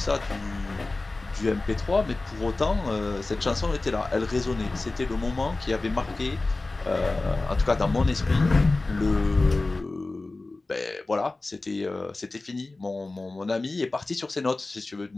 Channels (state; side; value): quieter; right; 3.2 dB